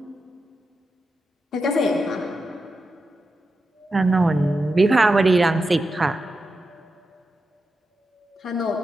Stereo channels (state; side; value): normal; both; correlation 0.89